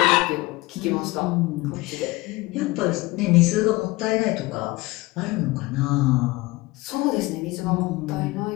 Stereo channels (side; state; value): right; quieter; 21.3 dB